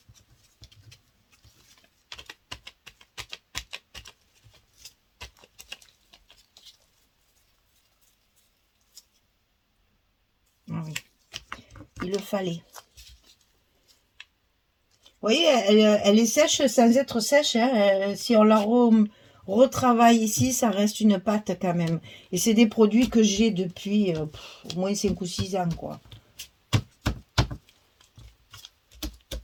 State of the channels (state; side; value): identical; both; correlation 1.00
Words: Ah oui, il le fallait. Vous voyez, elle est sèche sans être sèche, hein. Si on la retravaille ici, ça reste une pâte quand même. Et c'est des produits que j'ai depuis au moins 5 ou 6 ans, quoi.